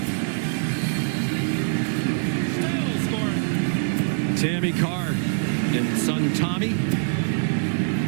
Still scoring. Tammy Carr and son Tommy.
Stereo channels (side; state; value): left; silent; digital silence